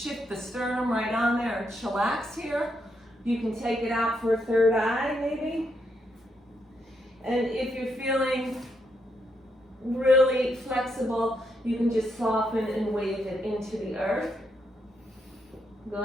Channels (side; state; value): both; normal; correlation 0.79